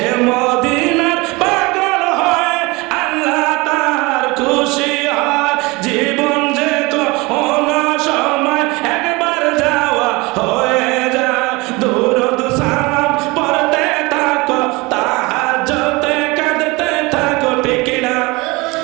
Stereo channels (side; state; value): left; quieter; 24.3 dB